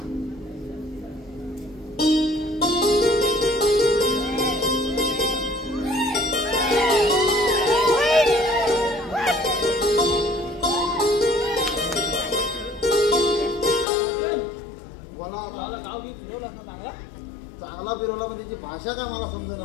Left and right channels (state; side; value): drops out; right; at 13.9 s